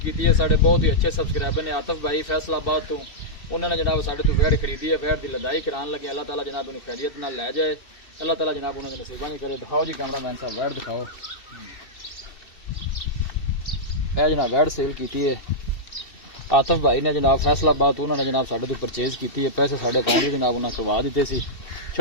है। साढ़े बहुत ही अच्छे सबसक्राइबर ने आतिफ भाई फैसलाबाद तो उन्होंने जनाब साढ़े तो वैड खरीदी है। वैड की लदाई कराने लगे। अल्लाह ताला जनाब उन्हें खैरियत नाल लै जाए। अल्लाह ताला जनाब उन्होंने नसीबा नहीं करे। दिखाओ जी कैमरा मैन साहब, वैड दिखाओ। यह जनाब वैड सेल की है आतिफ भाई ने जनाब फैसलाबाद तो उन्होंने जनाब साढ़े तो परचेज की है। पैसे साढ़े अकाउंट ही जनाब उन्होंने करवा दिते सी।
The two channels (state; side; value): late; right; 2.7 ms